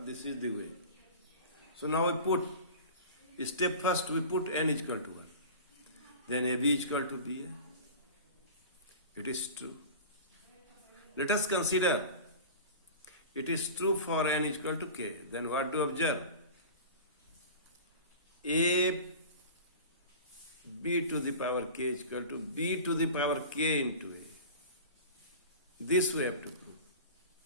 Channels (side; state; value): both; inverted; correlation -0.36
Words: is the way. So now we put, step first we put n is equal to 1. Then AB is equal to BA. It is true. Let us consider it is true for n is equal to k. Then what do you observe? A B to the power k is equal to B to the power k into A. This we have to prove.